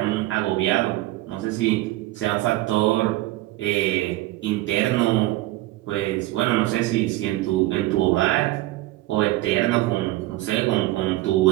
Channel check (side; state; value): left; quieter; 17.5 dB